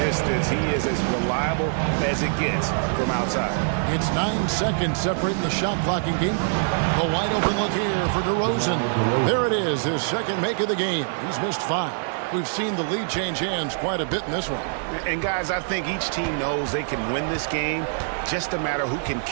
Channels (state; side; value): silent; left; 56 dB below the other